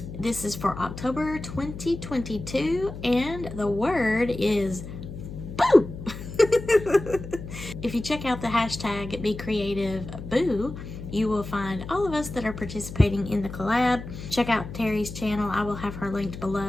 This is for October 2022 and the word is boo! If you check out the hashtag becreativeboo, you will find all of us that are participating in the collab. Check out Terry's channel. I will have her linked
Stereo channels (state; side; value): noise; left; hum, 10 dB below the sound